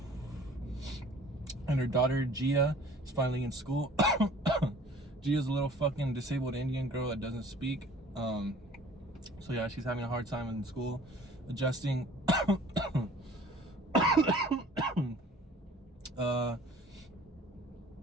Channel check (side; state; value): both; normal; correlation 0.49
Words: And her daughter, Gia, is finally in school. Gia's a little fucking disabled Indian girl that doesn't speak. So yeah, she's having a hard time in school, adjusting.